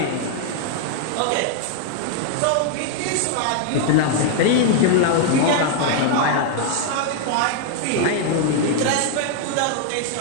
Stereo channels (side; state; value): both; different; correlation 0.00